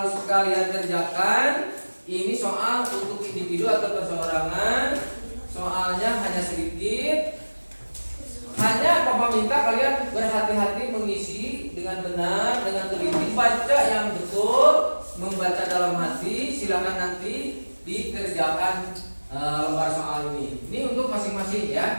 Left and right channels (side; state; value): both; inverted; correlation -1.00